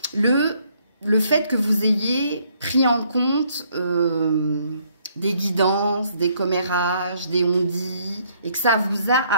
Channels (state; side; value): inverted; both; correlation -0.68